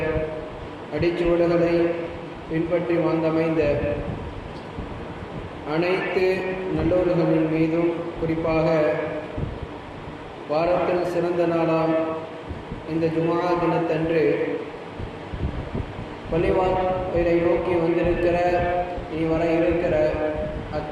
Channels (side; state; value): both; identical; correlation 1.00